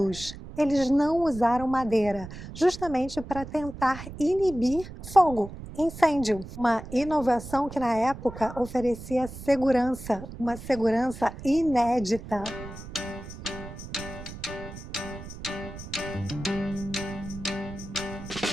Eles não usaram madeira, justamente para tentar inibir fogo, incêndio. Uma inovação que na época oferecia segurança, uma segurança inédita.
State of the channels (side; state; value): right; noise; rumble, 12 dB below the sound